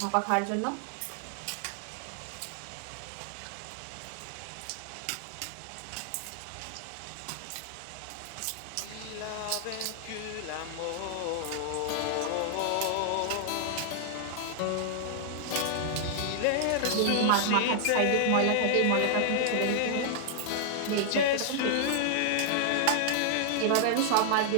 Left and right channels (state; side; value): different; both; correlation -0.01